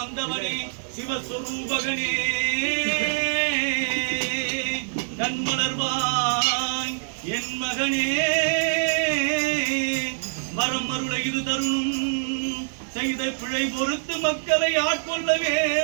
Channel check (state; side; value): silent; left; digital silence